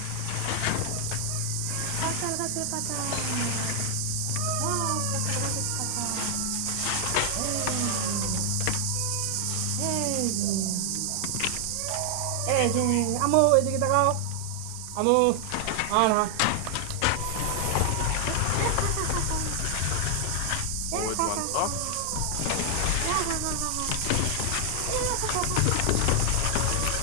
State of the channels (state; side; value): different; both; correlation 0.00